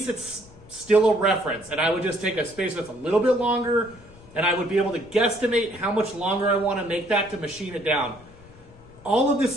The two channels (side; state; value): left; noise; rumble, 23 dB below the sound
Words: it's still a reference. And I would just take a spacer that's a little bit longer, and I would be able to guesstimate how much longer I want to make that to machine it down. All of this